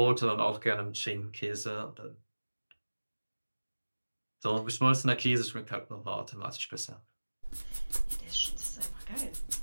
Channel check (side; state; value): both; inverted; correlation -1.00